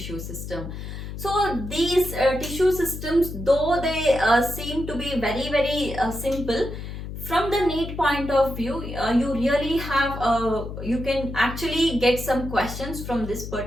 system. So these tissue systems, though they seem to be very, very simple, from the NEET point of view, you really have, you can actually get some questions from this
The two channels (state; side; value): noise; left; hum, 8 dB below the sound